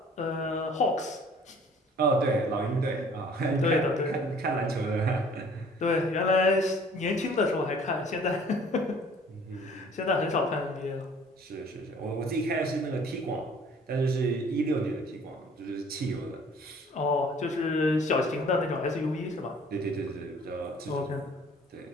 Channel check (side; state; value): both; normal; correlation 0.53